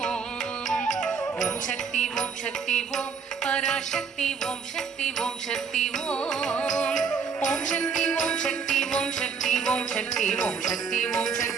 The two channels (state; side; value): quieter; left; 5.8 dB